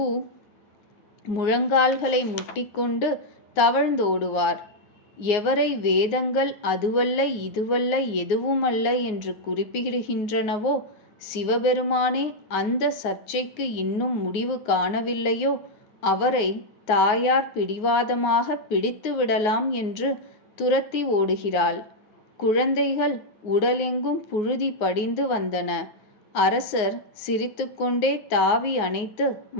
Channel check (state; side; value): late; right; 9.6 ms